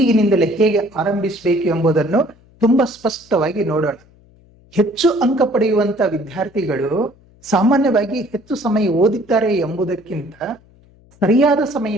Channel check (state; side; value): noise; left; hum, 29 dB below the sound